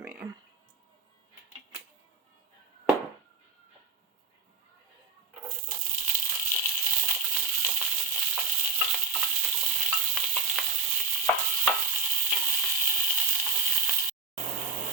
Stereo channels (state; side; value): quieter; left; 5.0 dB